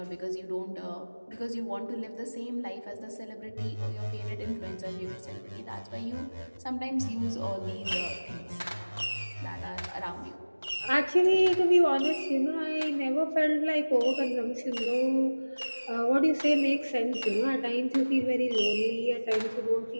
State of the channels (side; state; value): both; inverted; correlation -1.00